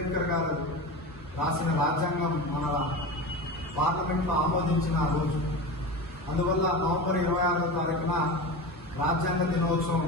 గారు రాసిన రాజ్యాంగం మన పార్లమెంట్లో ఆమోదించిన రోజు. అందువల్ల నవంబర్ 26వ తారీఖున రాజ్యాంగ దినోత్సవం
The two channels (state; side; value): normal; both; correlation 0.27